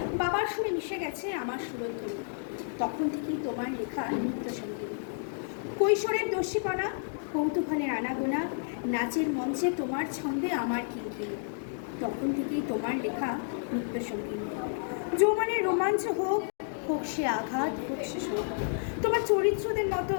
বাবার সুরে মিশে গেছে আমার সুরধ্বনি। তখন থেকেই তোমার লেখা নিত্য সঙ্গীত। কৈশোরের দস্যিপনা, কৌতূহলের আনাগোনা, নাচের মঞ্চে তোমার ছন্দে আমার কিনকিনি। তখন থেকেই তোমার লেখা নিত্য সঙ্গীত। যৌবনের রোমাঞ্চ হোক, হোক সে আঘাত, হোক সে শোক, তোমার চরিত্রদের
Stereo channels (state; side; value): silent; right; digital silence